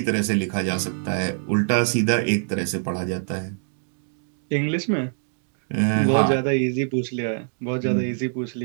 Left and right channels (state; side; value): silent; left; digital silence